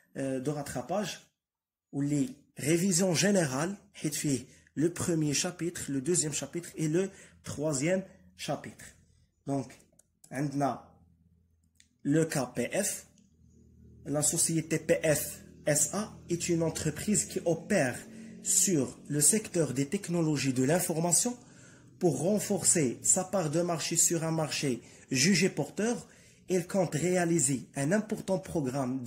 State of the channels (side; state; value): both; identical; correlation 1.00